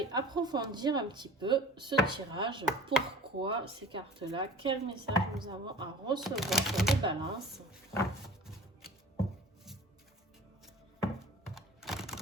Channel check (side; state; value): both; normal; correlation 0.41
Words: approfondir un petit peu ce tirage. Pourquoi ces cartes-là? Quel message nous avons à recevoir sur les balances?